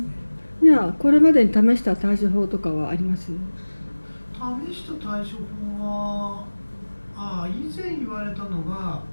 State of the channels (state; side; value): inverted; both; correlation -1.00